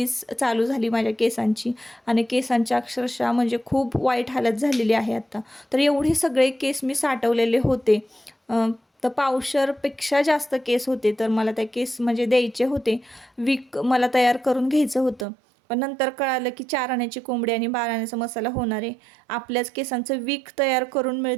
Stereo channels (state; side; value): drops out; left; at 15.2 s